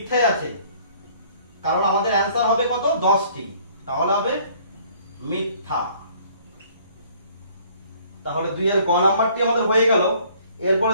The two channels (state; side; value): inverted; both; correlation -0.58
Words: আছে, কারণ আমাদের অ্যান্সার হবে কত? 10টি। তাহলে হবে মিথ্যা। তাহলে 2 এর গ নাম্বারটি আমাদের হয়ে গেল। এরপরে